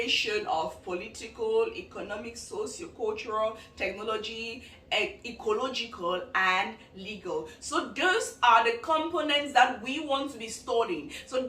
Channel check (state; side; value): identical; both; correlation 1.00